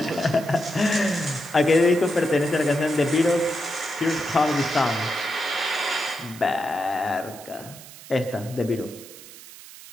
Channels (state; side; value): noise; right; hiss, 17 dB below the sound